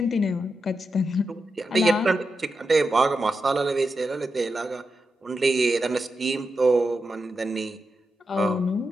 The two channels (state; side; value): normal; both; correlation 0.88